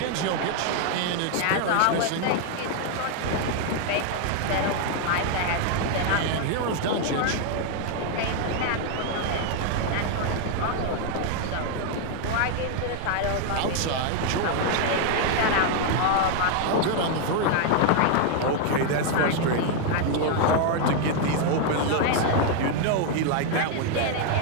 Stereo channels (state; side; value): different; both; correlation 0.00